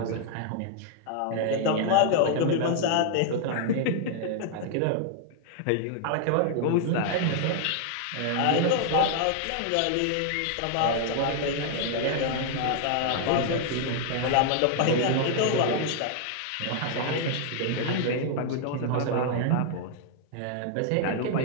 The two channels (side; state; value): both; different; correlation 0.00